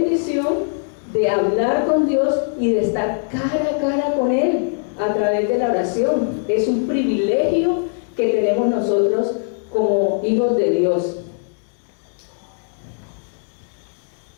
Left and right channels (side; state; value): right; silent; digital silence